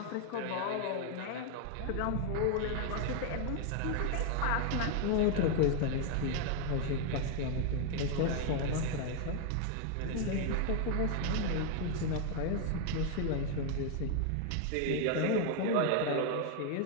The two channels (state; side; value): different; both; correlation 0.00